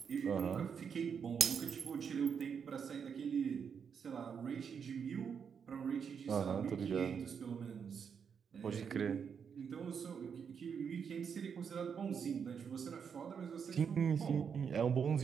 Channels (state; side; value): quieter; left; 6.8 dB